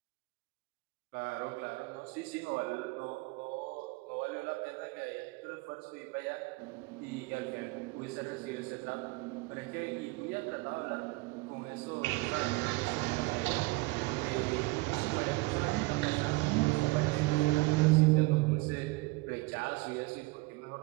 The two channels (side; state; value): left; quieter; 23.6 dB